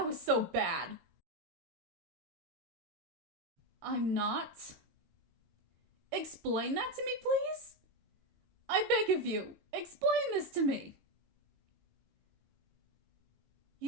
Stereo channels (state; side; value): late; left; 19 ms